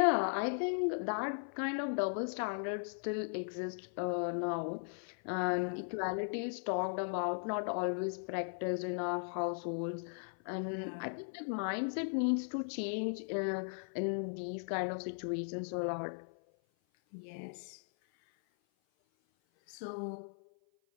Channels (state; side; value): silent; right; 53 dB below the other